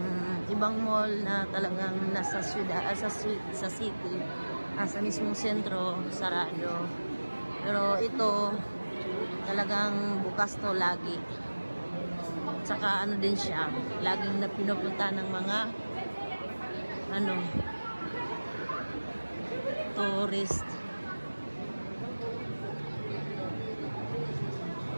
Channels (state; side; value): inverted; both; correlation -1.00